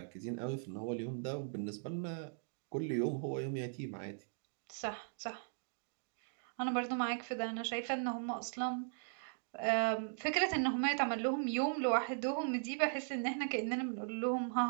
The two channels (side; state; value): left; silent; digital silence